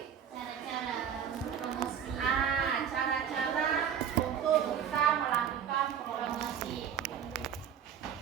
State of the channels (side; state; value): left; quieter; 8.6 dB